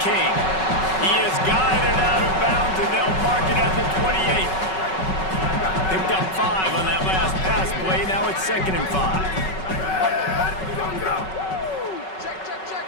King. He is guided out of bounds, and they'll mark it at the 28. Picked up 5 on that last pass play. Now it's 2nd and 5.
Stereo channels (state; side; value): late; right; 5.3 ms